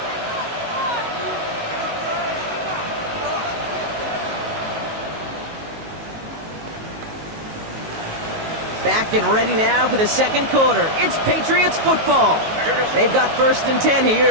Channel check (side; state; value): left; late; 19 ms